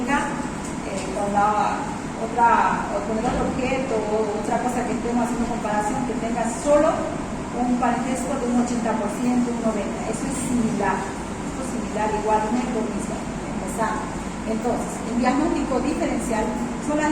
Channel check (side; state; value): both; identical; correlation 1.00